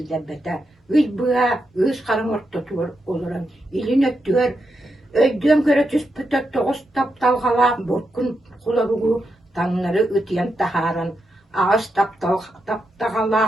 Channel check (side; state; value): both; normal; correlation 0.85